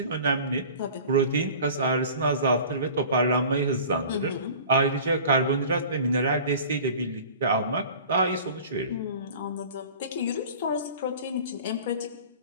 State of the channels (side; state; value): both; inverted; correlation -0.42